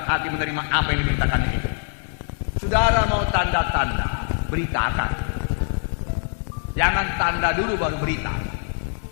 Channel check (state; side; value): silent; right; digital silence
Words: hati menerima apa yang diberitakannya itu. Saudara mau tanda-tanda, beritakan. Jangan tanda dulu baru berita.